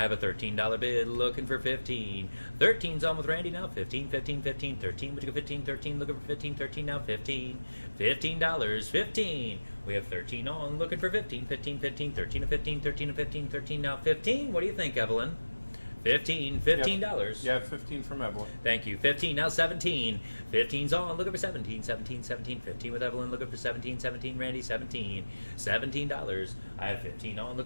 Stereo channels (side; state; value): both; inverted; correlation -1.00